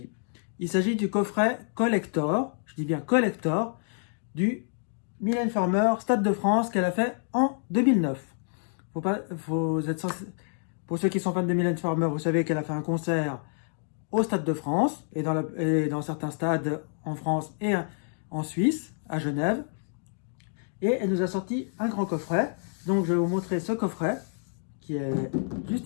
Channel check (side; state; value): right; silent; 59 dB below the other